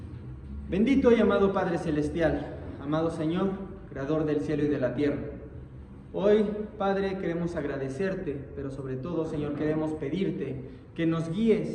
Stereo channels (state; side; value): identical; both; correlation 1.00